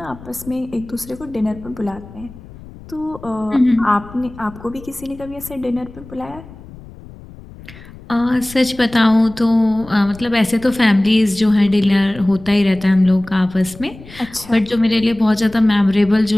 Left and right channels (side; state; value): left; noise; rumble, 18 dB below the sound